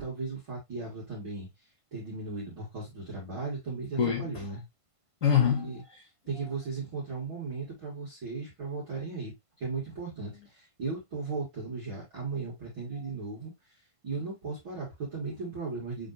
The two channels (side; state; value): left; late; 1.5 ms